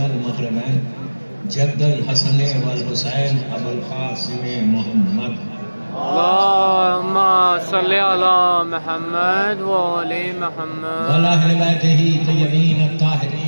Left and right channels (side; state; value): both; inverted; correlation -1.00